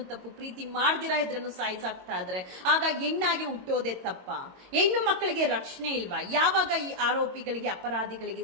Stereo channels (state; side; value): late; left; 22 ms